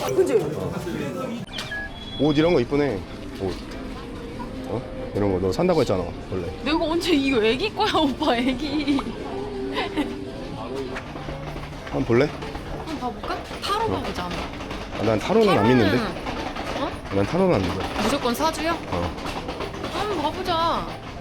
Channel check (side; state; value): both; identical; correlation 1.00